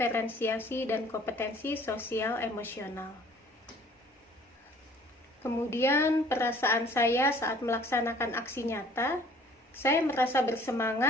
dan kompetensi sosial emosional. Kemudian perasaan saya saat melaksanakan aksi nyata, saya merasa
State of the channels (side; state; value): both; normal; correlation 0.54